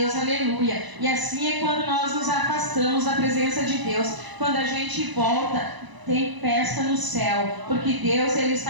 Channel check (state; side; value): late; left; 1.0 ms